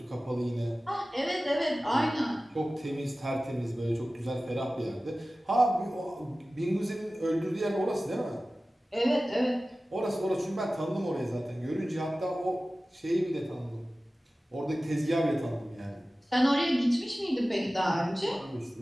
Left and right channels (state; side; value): normal; both; correlation 0.96